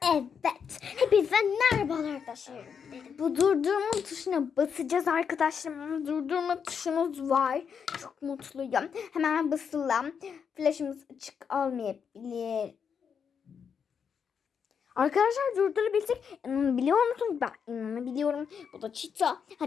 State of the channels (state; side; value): quieter; right; 6.9 dB